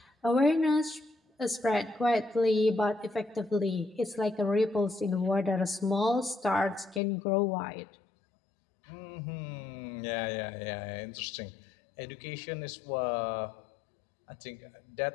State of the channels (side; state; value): right; drops out; at 7.0 s